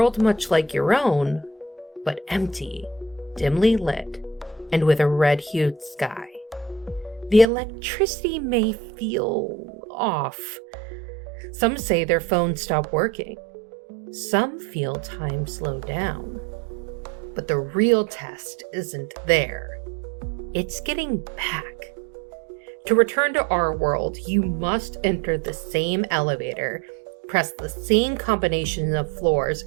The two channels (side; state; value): left; drops out; at 7.5 s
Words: much like your own, but empty, dimly lit, and with a red-hued sky. The electricity may feel off. Some say their phones stop working. Some feel time slow down. But the real test isn't there. It's getting back. To return to our world, you must enter the same elevator, press the same combination of floors